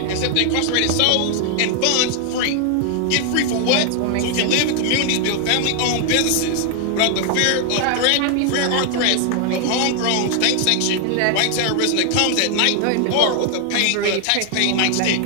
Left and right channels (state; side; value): different; both; correlation 0.00